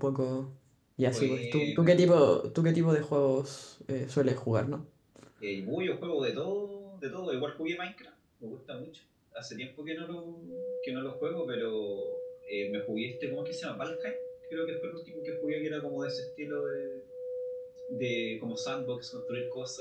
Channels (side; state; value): both; identical; correlation 1.00